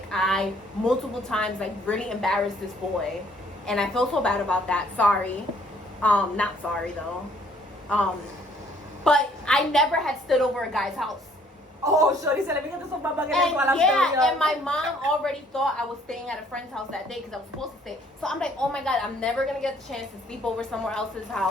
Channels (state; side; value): normal; both; correlation 0.61